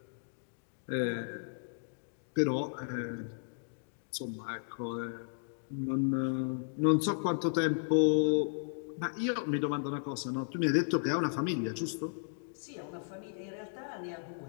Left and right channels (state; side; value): silent; right; digital silence